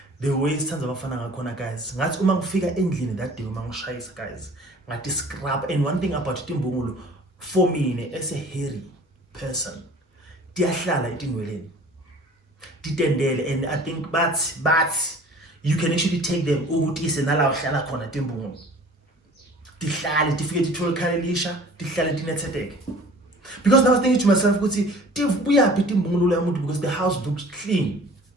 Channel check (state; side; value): normal; both; correlation 0.47